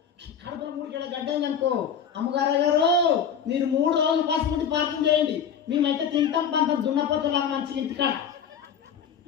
కడపలో 3 కిలో గడ్డ అయిందనుకో, అమ్మగారు గారు మీరు 3 రోజులు పాసుకుంటే ప్రార్థన చేయండి, మేమైతే తింటాం పంతం దున్నపోతులాగా మంచి ఇంటికాడ.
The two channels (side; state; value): right; quieter; 7.5 dB